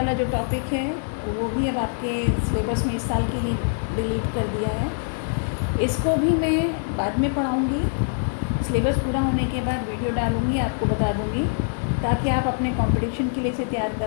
जो टॉपिक है वो भी अब आपके सिलेबस में इस साल के लिए डिलीट कर दिया है। इसको भी मैं बाद में पढ़ाऊँगी, सिलेबस पूरा होने के बाद वीडियो डालूँगी, आपको बता दूँगी, ताकि आप अपने कंपटीशन के लिए इसे तैयार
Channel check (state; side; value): silent; right; digital silence